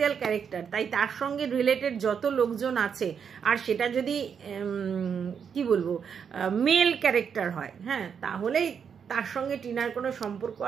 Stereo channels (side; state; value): left; quieter; 7.1 dB